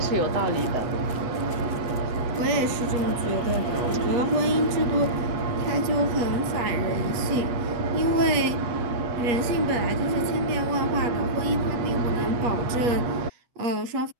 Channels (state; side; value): late; left; 8.3 ms